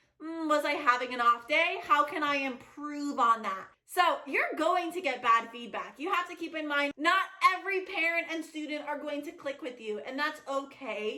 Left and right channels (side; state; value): both; identical; correlation 1.00